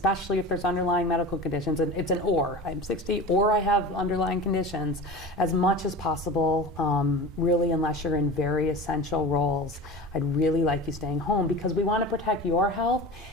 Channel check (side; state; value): both; normal; correlation 0.32